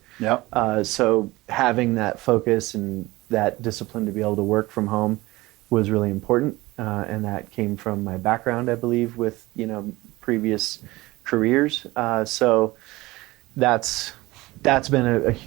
Yeah. So having that focus and that discipline to be able to work from home was really important, and that came from my background, I believe, with previous careers. So that's been a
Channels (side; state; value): left; quieter; 20.0 dB